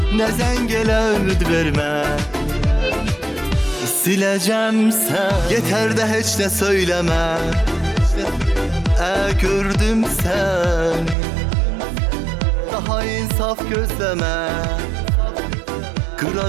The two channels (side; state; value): left; drops out; at 11.2 s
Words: Ne zengele ümit verme, sileceğim seni. Yeter de hiç ne söyleme, gördüm seni. Daha insaf gözleme,